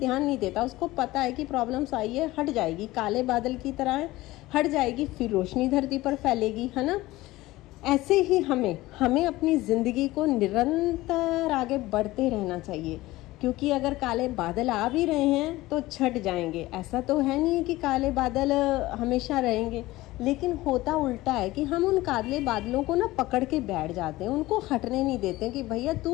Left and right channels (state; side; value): quieter; right; 18.3 dB